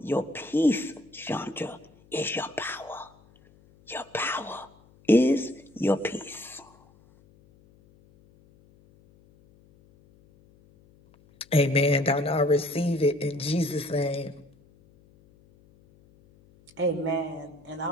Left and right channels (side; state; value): left; noise; hum, 28 dB below the sound